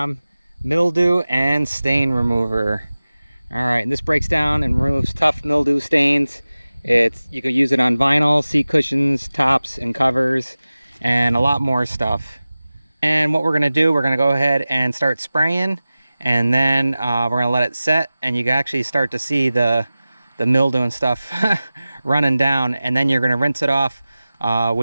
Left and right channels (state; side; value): inverted; both; correlation -0.97